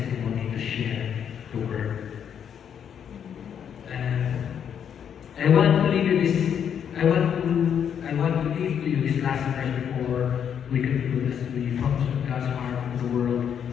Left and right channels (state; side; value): quieter; right; 8.3 dB